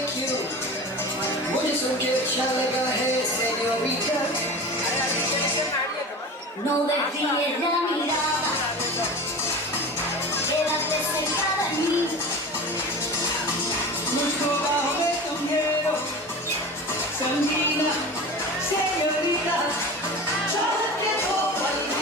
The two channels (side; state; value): both; normal; correlation 0.32